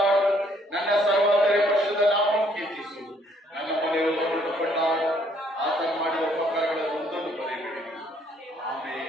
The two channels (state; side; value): normal; both; correlation 0.65